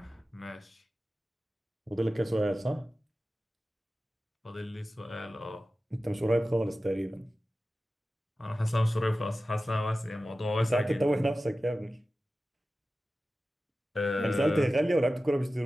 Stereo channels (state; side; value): normal; both; correlation 0.95